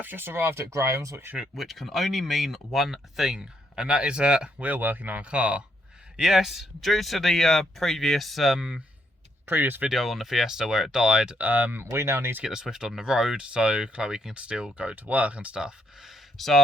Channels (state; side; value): normal; both; correlation 0.75